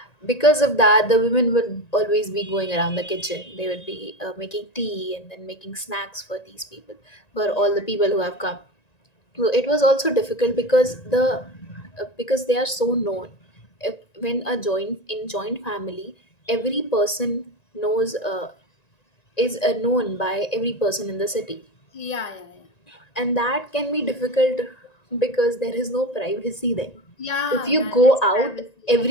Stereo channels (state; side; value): late; right; 1.9 ms